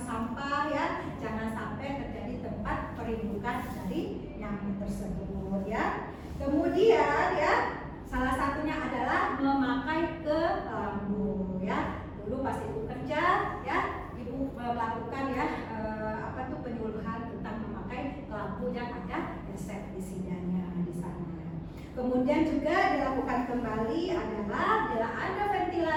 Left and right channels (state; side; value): identical; both; correlation 1.00